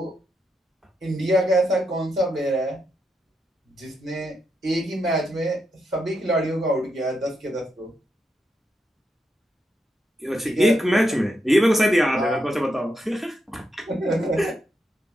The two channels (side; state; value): both; normal; correlation 0.83